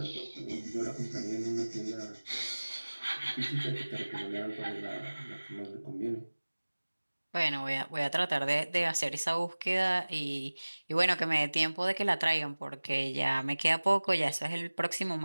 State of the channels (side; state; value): both; inverted; correlation -1.00